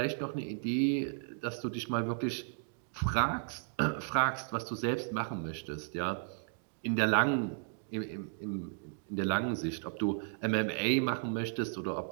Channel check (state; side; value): silent; left; digital silence